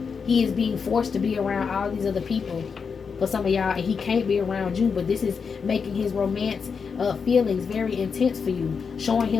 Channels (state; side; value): quieter; right; 5.8 dB